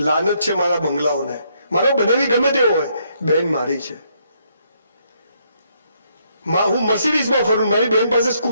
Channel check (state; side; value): inverted; both; correlation -0.73